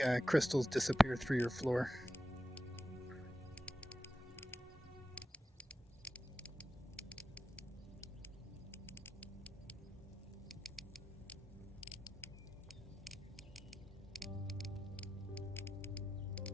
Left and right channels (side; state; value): both; normal; correlation 0.91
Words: crystals disappear through your floor.